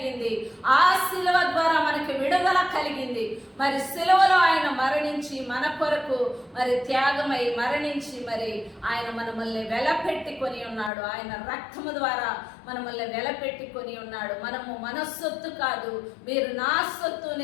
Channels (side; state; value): right; drops out; at 10.9 s